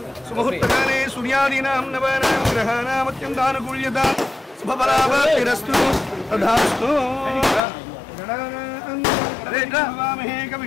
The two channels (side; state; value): right; drops out; at 7.6 s